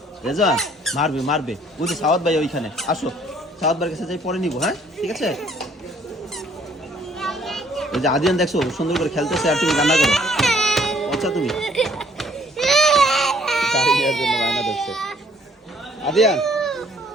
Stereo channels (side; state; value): both; normal; correlation 0.62